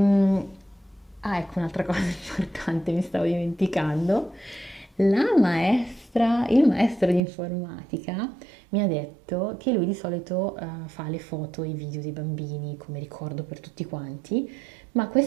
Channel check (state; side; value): drops out; left; at 7.2 s